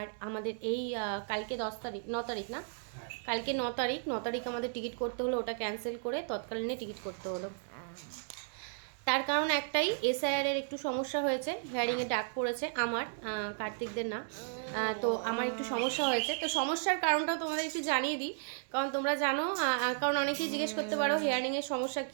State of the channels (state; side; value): silent; left; digital silence